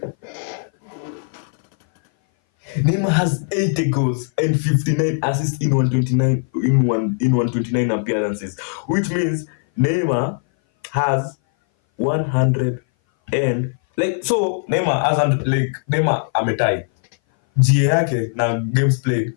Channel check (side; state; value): right; silent; 59 dB below the other